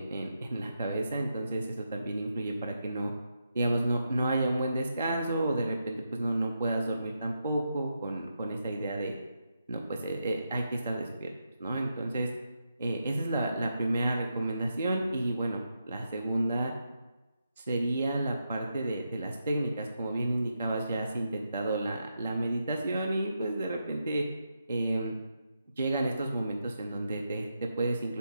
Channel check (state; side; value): inverted; both; correlation -0.84